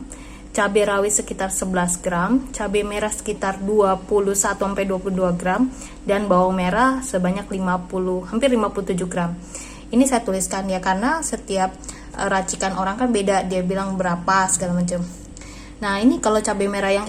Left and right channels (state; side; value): identical; both; correlation 1.00